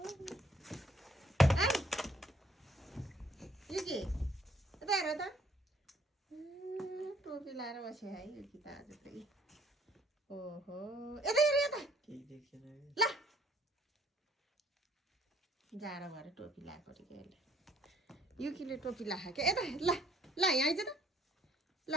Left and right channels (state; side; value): normal; both; correlation 0.62